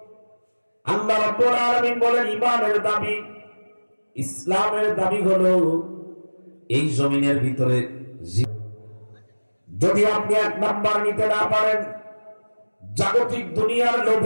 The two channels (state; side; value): inverted; both; correlation -1.00